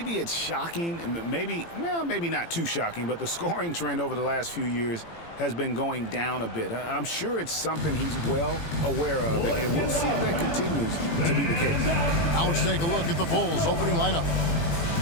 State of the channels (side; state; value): right; late; 18 ms